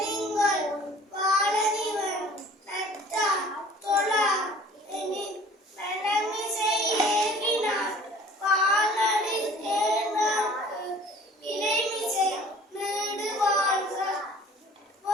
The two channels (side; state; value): both; normal; correlation 0.50